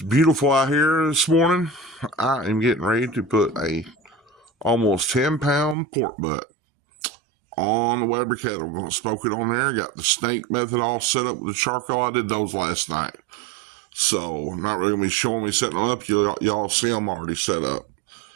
beautiful out here this morning. I am getting ready to put a almost 10-pound pork butt on the Weber kettle. I'm going to smoke it on there. Got the snake method all set up with the charcoal. I did those last night. So I'm not really going to be showing me setting them up. Y'all see them already set up.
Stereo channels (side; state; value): left; drops out; at 5.8 s